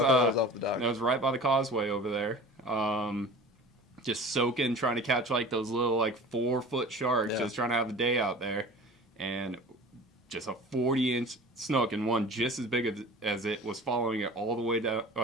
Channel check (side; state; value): both; normal; correlation 0.39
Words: off the dock. That was right by the causeway over there. Just soaking, trying to catch those little 4-foot sharks, just trying to have a day out there. And just a 40-inch snook and one just as big as it was following it all the way down